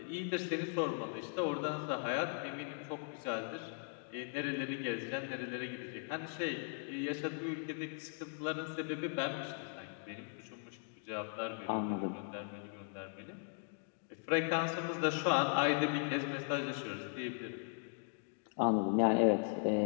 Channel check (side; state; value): right; silent; 52 dB below the other